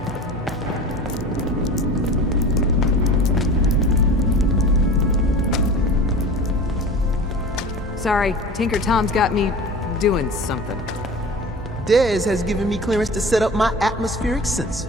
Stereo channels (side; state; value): both; normal; correlation 0.37